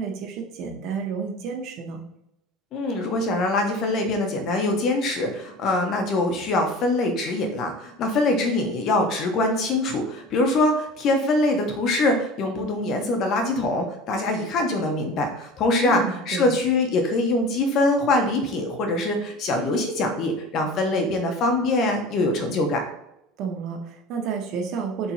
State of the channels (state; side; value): normal; both; correlation 0.37